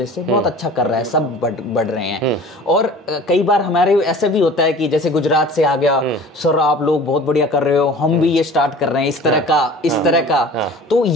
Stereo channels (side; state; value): both; normal; correlation 0.43